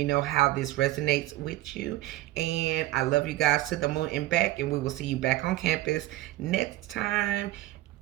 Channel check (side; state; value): left; quieter; 16.8 dB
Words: know how this resonates with you. And I love you guys to the moon and back. And we will see you back on campus next time.